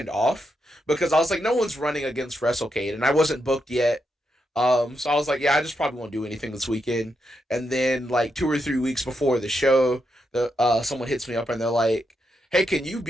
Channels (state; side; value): normal; both; correlation 0.83